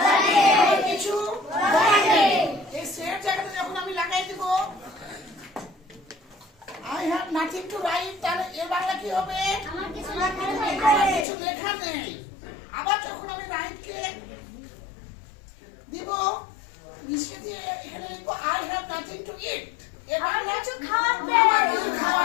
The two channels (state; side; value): drops out; right; at 11.2 s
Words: নেই। আমার কিছু বলার নেই। এই সেট জায়গাতে যখন আমি লাগাই দিব I have nothing to write, তাহলে এর বাংলা কি হবে? আমার কিছু লেখা নেই। আবার যখন আমি রাইট কে দিব নিচে দিয়ে এখানে লিখব I have nothing to eat. এর বাংলা কিছু খাওয়ার নেই। আমার কিছু